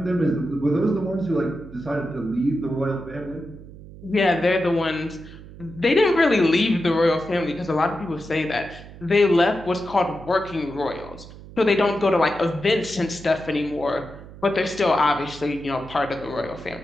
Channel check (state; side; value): noise; right; hum, 17 dB below the sound